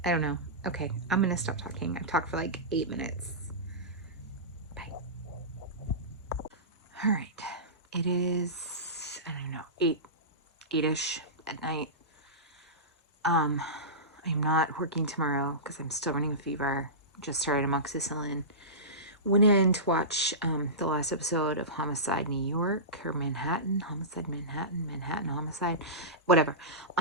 don't know. Okay, I'm gonna stop talking. I've talked for like 8 minutes. Bye. All right, it is, I don't know, 8-ish at night. I'm not working tomorrow because I'm still running a fever. Just started amoxicillin. Went in to watch the last episode of Homicide New York or Manhattan, Homicide Manhattan, Manhattan Homicide, whatever,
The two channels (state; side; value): normal; both; correlation -0.20